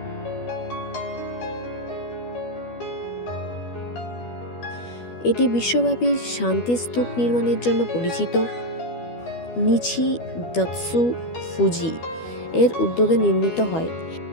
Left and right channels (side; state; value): right; late; 12 ms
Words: এটি বিশ্বব্যাপী শান্তি স্তূপ নির্মাণের জন্য পরিচিত। নিচি দাৎসু ফুজি এর উদ্যোগে নির্মিত হয়।